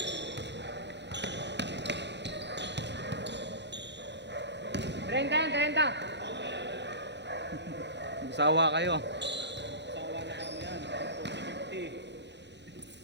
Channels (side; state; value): left; late; 0.51 ms